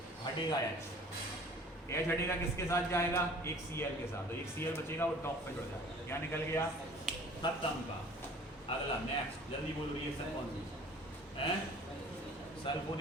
हटेगा H। H हटेगा, किसके साथ जाएगा? एक Cl के साथ। तो एक Cl बचेगा, वो टॉप पे जुड़ जाएगा। क्या निकल गया? खत्म का। अगला नेक्स्ट, जल्दी बोलो रिएक्शन कौन सी है?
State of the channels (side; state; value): both; normal; correlation 0.48